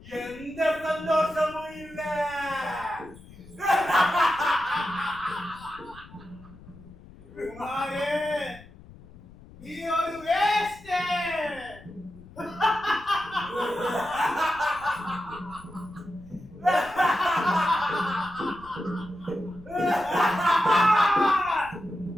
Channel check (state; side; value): noise; left; rumble, 20 dB below the sound